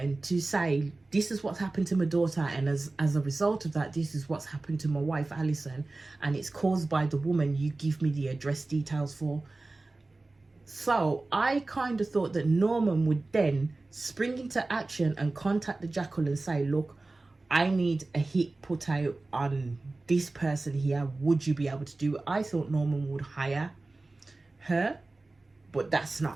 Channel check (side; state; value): left; quieter; 3.2 dB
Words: to say, this is what's happened to my daughter, and as a result of that, this is what's happened to my wife Alison, and it's caused by the woman you give me the address details for. So I kind of thought that Norman would then spring into action and contact the Jackal and say, look, I need a hit put out on this person here, would you be able to do it? I thought Norman would hire her, but that's